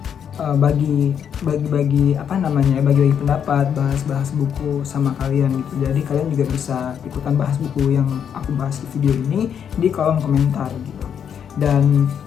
bagi pendapat, bahas buku sama kalian gitu. Jadi kalian juga bisa ikutan bahas buku yang aku bahas di video ini di kolom komentar gitu. Dan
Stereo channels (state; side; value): quieter; right; 8.2 dB